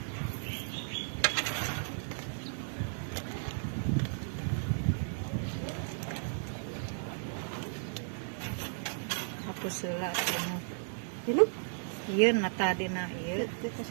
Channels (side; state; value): left; silent; digital silence